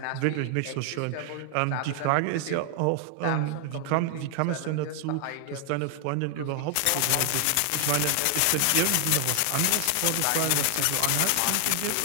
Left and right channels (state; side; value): different; both; correlation 0.00